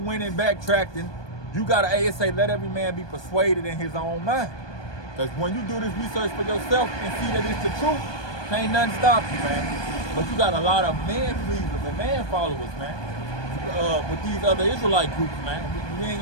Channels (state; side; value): late; right; 1.2 ms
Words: and backtracking. You got to say, let every man be persuaded in his own mind. Because when you do this research for yourself and see that it's the truth, can't nothing stop you, man. But you got a lot of man pleasers and man followers, man. With these other Israelite groups, man. We ain't